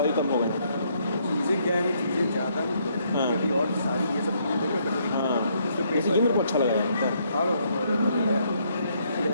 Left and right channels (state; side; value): inverted; both; correlation -0.71